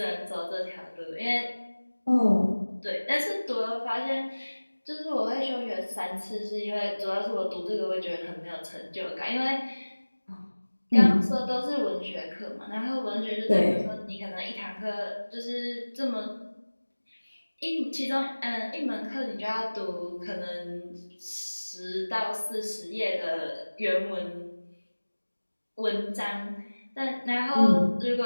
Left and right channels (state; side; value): inverted; both; correlation -1.00